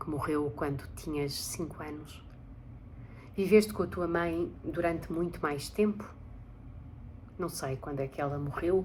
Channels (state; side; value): identical; both; correlation 1.00